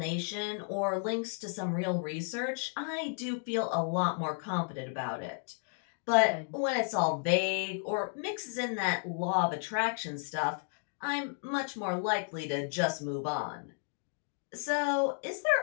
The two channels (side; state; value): right; silent; 56 dB below the other